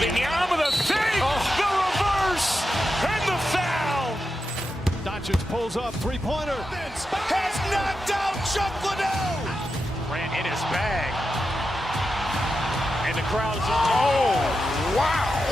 the fake, the reverse, and the foul. Doncic pulls up, three-pointer. Has knocked out Chuck Liddell. Grant in his bag. And the crowd is, oh, wow.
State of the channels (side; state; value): both; normal; correlation 0.89